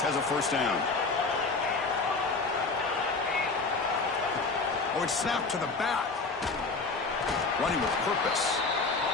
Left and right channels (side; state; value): right; quieter; 4.0 dB